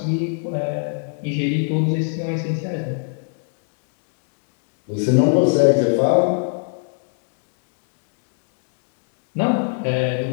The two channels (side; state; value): right; silent; 59 dB below the other